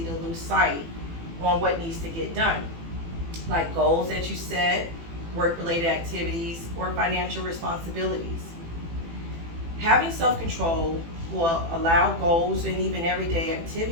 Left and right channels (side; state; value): left; late; 18 ms